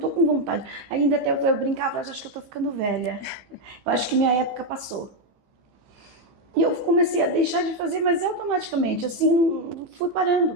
com vontade. Ainda até eu brincava, acho que eu tô ficando velha. Eu acho que minha época passou. E eu comecei a deixar de fazer, mas automaticamente, assim, fui parando.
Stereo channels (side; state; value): left; late; 15 ms